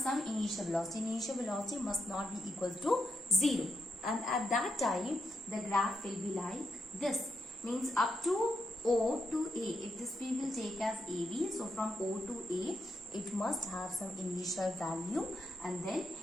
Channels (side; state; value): both; normal; correlation 0.82